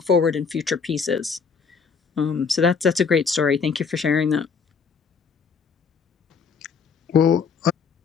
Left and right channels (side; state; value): right; quieter; 5.6 dB